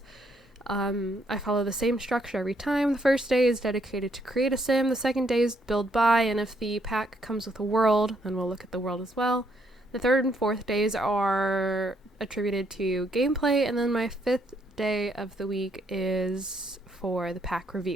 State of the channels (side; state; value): both; normal; correlation 0.72